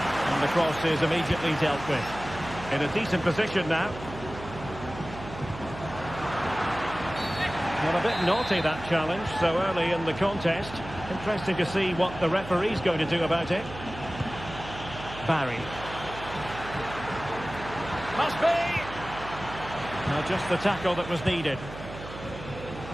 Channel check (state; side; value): noise; right; hum, 12 dB below the sound